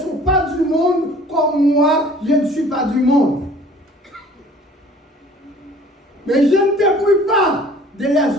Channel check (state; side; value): normal; both; correlation 0.51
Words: pas du monde, comme moi, je ne suis pas du monde. Mais je ne te prie pas de les